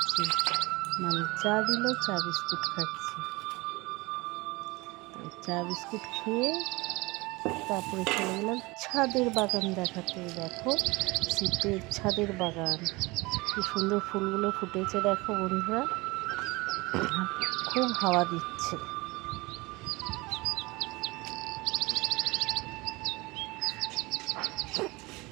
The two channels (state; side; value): quieter; left; 23.3 dB